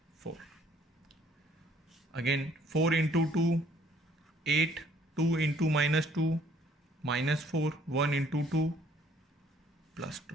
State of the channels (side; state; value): both; normal; correlation 0.61